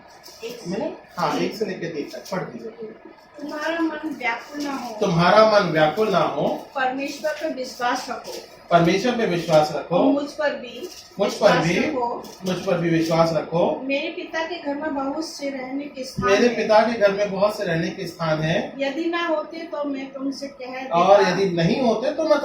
मैंने 1 से लेके 3 तक पढ़ दीजिए। तुम्हारा मन व्याकुल ना हो, तुम्हारा मन व्याकुल ना हो, परमेश्वर पर विश्वास रखो, परमेश्वर पे विश्वास रखो, और मुझ पर भी विश्वास रखो। मेरे पिता के घर में बहुत से रहने के स्थान मेरे हैं। पिता के घर में बहुत से रहने के स्थान हैं। यदि ना होते तो मैं तुमसे कह देता, और यदि नहीं होते तो मैं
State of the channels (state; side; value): identical; both; correlation 1.00